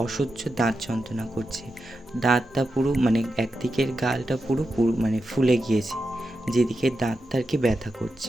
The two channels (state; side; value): normal; both; correlation 0.89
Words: অসহ্য দাঁত যন্ত্রণা করছে। দাঁতটা পুরো একদিকের গালটা পুরো ফুলে গিয়েছে, যেদিকে দাঁতটা আর কি ব্যথা করছে।